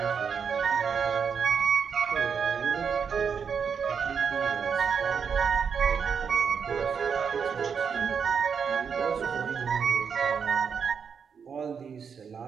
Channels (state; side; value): quieter; left; 6.5 dB